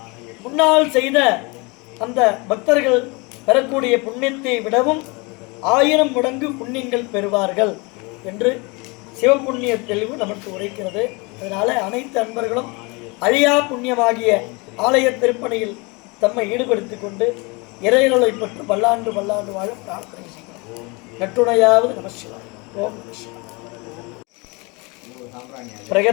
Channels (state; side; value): quieter; right; 28.1 dB